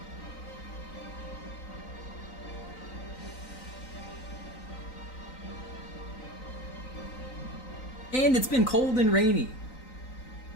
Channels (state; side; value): late; right; 3.9 ms